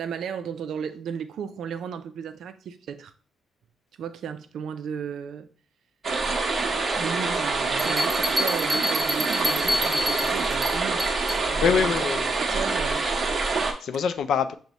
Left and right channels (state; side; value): normal; both; correlation 0.78